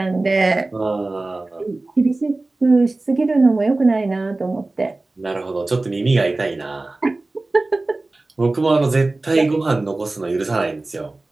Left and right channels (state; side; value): quieter; left; 3.1 dB